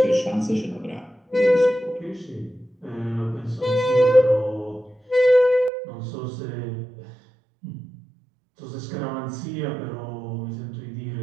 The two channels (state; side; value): drops out; left; at 5.7 s